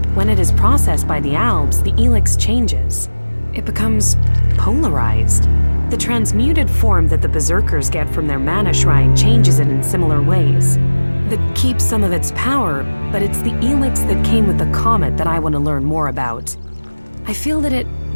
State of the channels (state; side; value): inverted; both; correlation -1.00